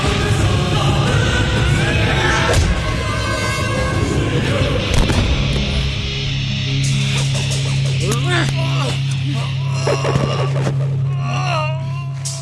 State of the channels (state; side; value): identical; both; correlation 1.00